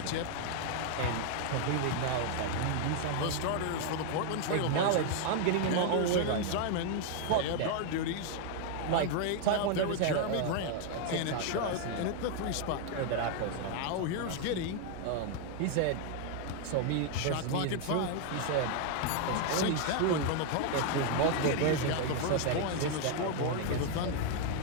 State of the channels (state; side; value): different; both; correlation 0.00